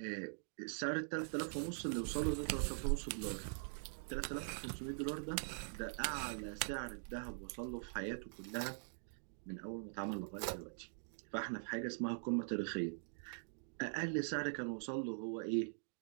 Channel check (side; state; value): left; silent; digital silence